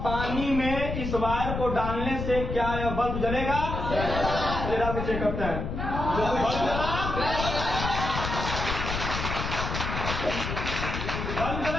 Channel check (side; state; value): left; noise; rumble, 4 dB below the sound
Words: पानी में इस वायर को डालने से क्या यह बल्ब जलेगा? चलिए डाल के चेक करते हैं, बल्ब जला